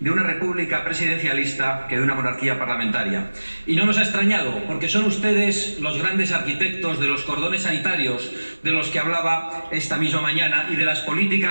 una república presidencialista que de una monarquía parlamentaria. Y no nos ha extrañado, porque son ustedes los grandes arquitectos de los cordones sanitarios de los que hablaba esta misma mañana y de las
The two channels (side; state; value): both; inverted; correlation -1.00